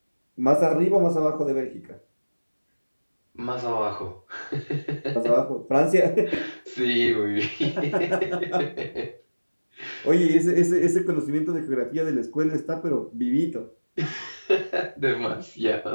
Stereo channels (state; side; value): inverted; both; correlation -1.00